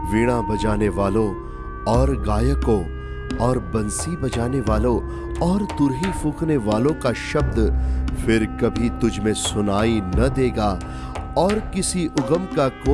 वीणा बजाने वालों और गायकों और बंसी बजाने वालों और तुरही फूंकने वालों का शब्द फिर कभी तुझ में सुनाई न देगा, और किसी उगम का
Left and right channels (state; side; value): identical; both; correlation 1.00